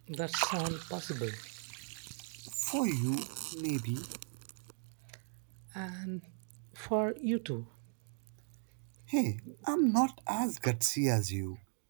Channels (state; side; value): silent; left; 53 dB below the other